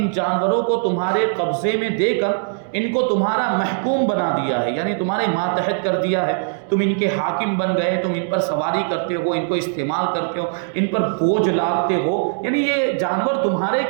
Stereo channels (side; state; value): left; silent; digital silence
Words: جانوروں کو تمہارے قبضے میں دے کر ان کو تمہارا محکوم بنا دیا ہے، یعنی تمہارے ماتحت کر دیا ہے، تم ان کے حاکم بن گئے، تم ان پر سواری کرتے ہو، ان کو استعمال کرتے ہو، ان پر بوجھ لادتے ہو، یعنی یہ جانور تمہارے